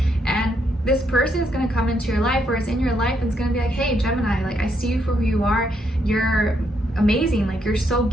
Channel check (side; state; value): both; normal; correlation 0.76